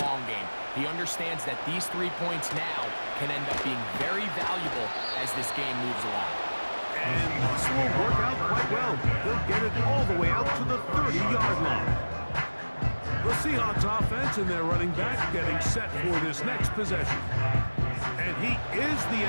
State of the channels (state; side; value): inverted; both; correlation -1.00